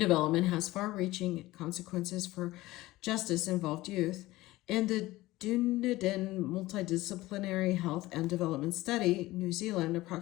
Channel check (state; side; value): quieter; right; 18.2 dB